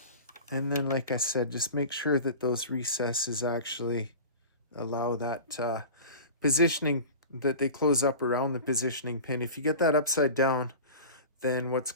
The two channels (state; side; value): inverted; both; correlation -0.35